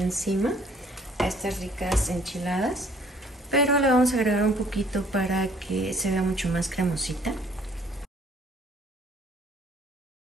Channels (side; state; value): both; normal; correlation 0.58